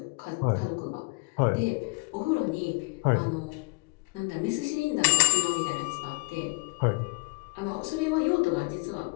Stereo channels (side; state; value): right; quieter; 30.5 dB